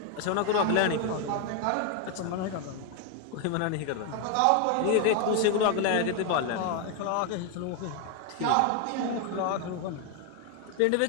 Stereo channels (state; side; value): different; both; correlation 0.01